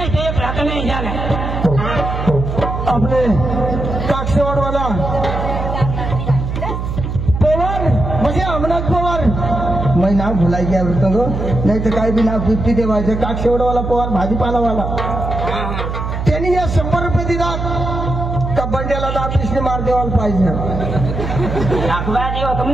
एक रात नहीं जाना आपले काक्षेवाड वाला पवार म्हणजे अमनाथ पवार मैं नाव भुलाई गया तो नहीं तो काही भी नाव 50 देवायचं काक्षेवाड वाला पवार भाजीपालावाला त्यांनी या 100 रुपये दिला का बंड्याला दापिसने मार देवायला पाहिजे. अखबारी होत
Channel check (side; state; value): right; noise; hum, 4 dB below the sound